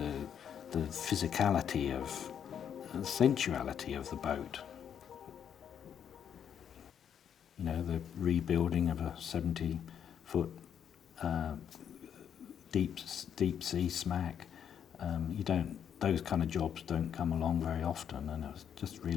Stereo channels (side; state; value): right; quieter; 8.6 dB